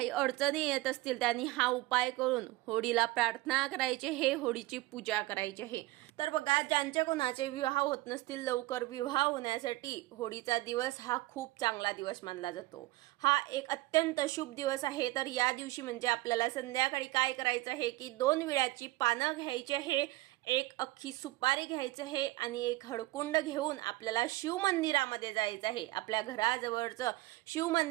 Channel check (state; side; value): quieter; left; 19.3 dB